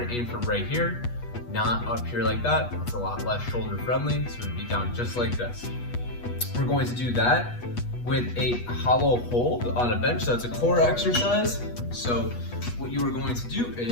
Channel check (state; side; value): late; right; 8.3 ms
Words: to aim for right here, not up here like that. It's a lot less shoulder friendly, so it'd be down just like this. We're going to do that with a hollow hold on a bench. So it's a core exercise. So what you are going to do